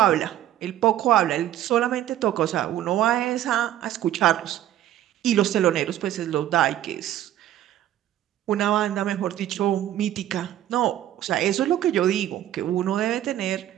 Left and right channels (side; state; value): left; quieter; 12.4 dB